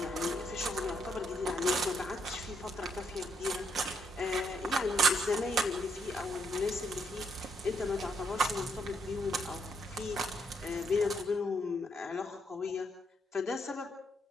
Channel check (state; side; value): normal; both; correlation 0.74